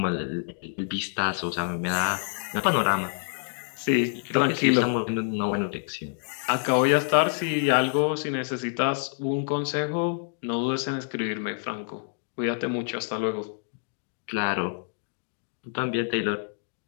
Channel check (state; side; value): silent; right; 60 dB below the other